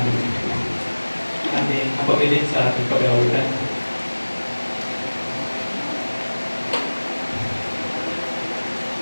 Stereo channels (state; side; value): inverted; both; correlation -1.00